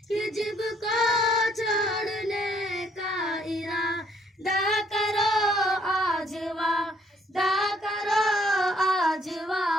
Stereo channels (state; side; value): normal; both; correlation 0.66